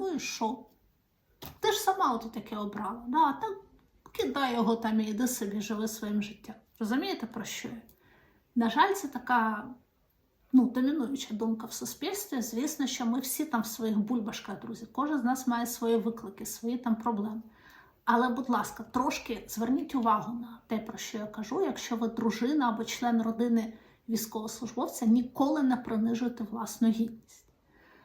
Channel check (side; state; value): both; identical; correlation 1.00